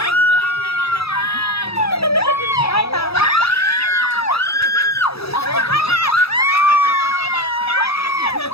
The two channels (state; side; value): late; right; 0.77 ms